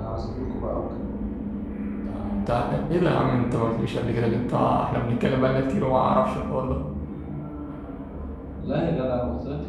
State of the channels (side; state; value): both; identical; correlation 1.00